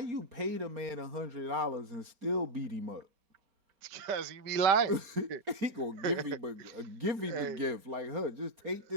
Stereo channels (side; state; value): left; late; 4.3 ms